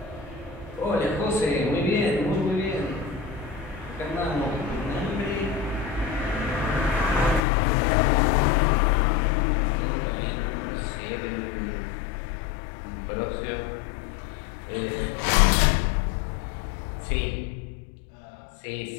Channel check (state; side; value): drops out; right; at 7.4 s